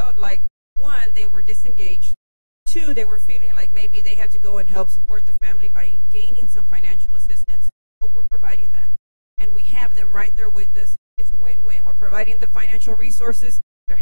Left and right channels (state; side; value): inverted; both; correlation -1.00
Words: like, 1, they were disengaged, 2, they were feeling like maybe they had to go and help support the family by gaining some financial assistance, but we're providing that. And we have them right there with us. It's a win-win. We're providing the financial resources. They're